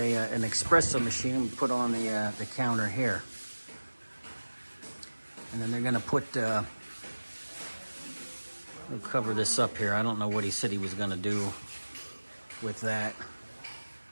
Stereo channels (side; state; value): both; inverted; correlation -1.00